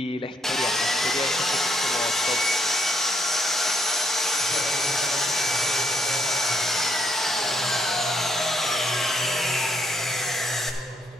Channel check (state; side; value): normal; both; correlation 0.72